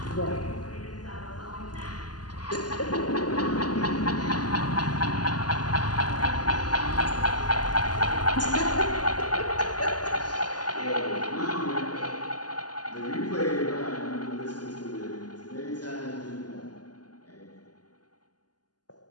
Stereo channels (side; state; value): right; late; 0.69 ms